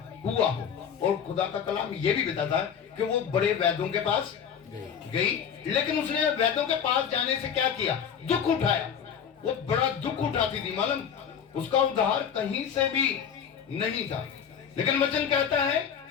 हुआ हो। और खुदा का कलाम ये भी बताता है कि वो बड़े वैद्यों के पास गई, लेकिन उसने वैद्यों के पास जाने से क्या किया? दुख उठाया। वो बड़ा दुख उठाती थी, मालूम, उसका उद्धार कहीं से भी नहीं था। लेकिन वचन कहता है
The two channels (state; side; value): quieter; right; 7.9 dB